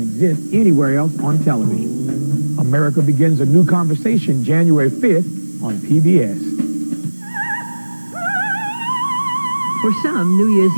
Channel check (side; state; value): both; inverted; correlation -1.00